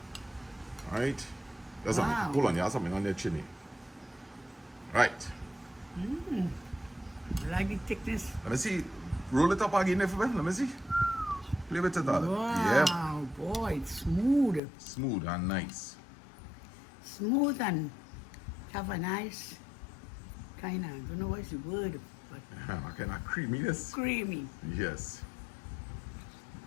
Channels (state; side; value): drops out; right; at 14.6 s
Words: Alright. There's something. Hold on, you have something on their chinny. Right. I like the thickness. Let me see. Roll it up again if let me see. Play with it all. Wow, boy, it's smooth. Smooth and nice. Smooth and have a nice kind of, I don't know what's the word, but A kind of creaminess. creamy. Yes.